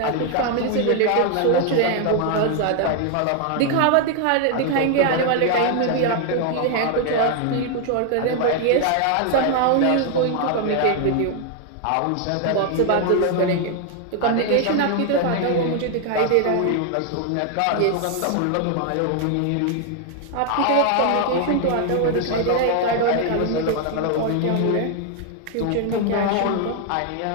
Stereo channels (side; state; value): both; different; correlation 0.00